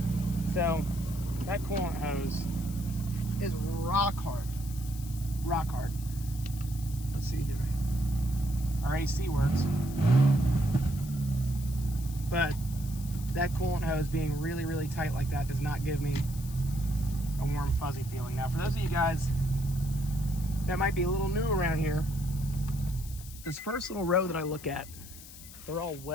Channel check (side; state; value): left; noise; hiss, 16 dB below the sound